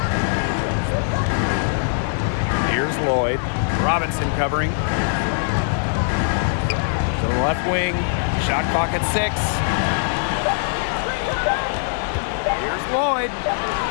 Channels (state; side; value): silent; right; 61 dB below the other